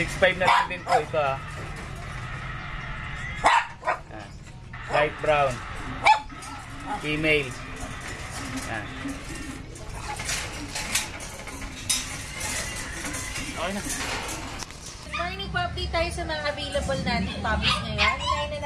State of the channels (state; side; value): identical; both; correlation 1.00